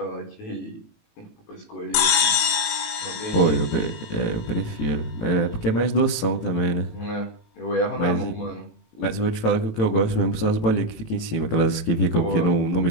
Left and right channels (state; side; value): late; right; 18 ms